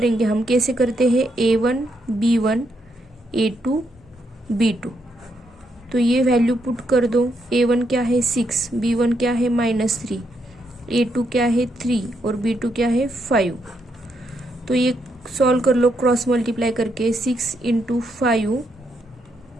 हम, कैसे करते हैं, a1 b1 a2 b2। तो ये वैल्यू पुट कर दो। a1 क्या है 6, b1 क्या है -3, a2 क्या है 3 और b2 क्या है 5। तो ये सॉल्व कर लो क्रॉस मल्टीप्लाई करके। 6 इंटू 5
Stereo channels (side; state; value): both; normal; correlation 0.78